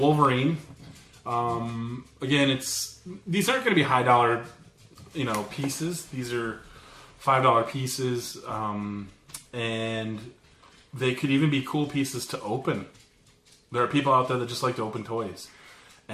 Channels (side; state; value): both; identical; correlation 1.00